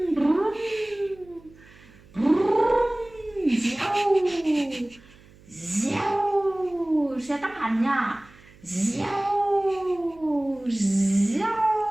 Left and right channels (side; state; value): right; noise; hum, 25 dB below the sound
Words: Xe tốc hành nha.